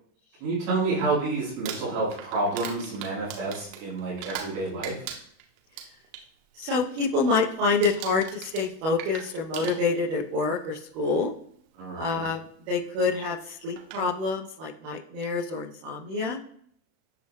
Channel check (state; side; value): late; left; 31 ms